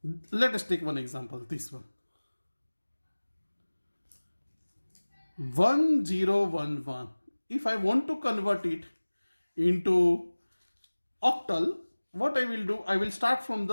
let us take one example, this one. 1011. If I want to convert it into octal, what I will do, I will start from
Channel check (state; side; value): inverted; both; correlation -1.00